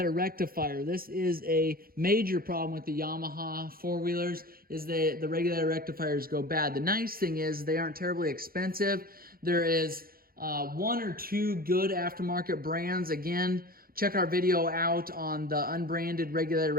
rectifier. This is a major problem with the Yamaha four-wheelers, is the regulator rectifiers go bad. The nice thing is they aren't terribly expensive. There is 1 or 2 good aftermarket brands. Again, check our video out on the unbranded regulator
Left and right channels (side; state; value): left; late; 0.43 ms